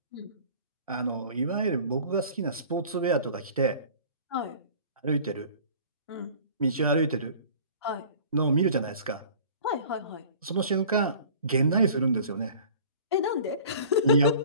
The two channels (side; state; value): both; inverted; correlation -0.46